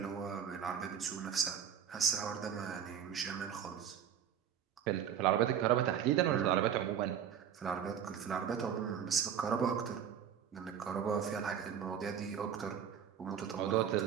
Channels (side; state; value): left; quieter; 8.7 dB